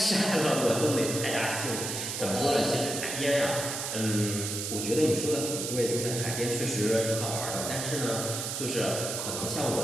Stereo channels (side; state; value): right; noise; hiss, 4 dB below the sound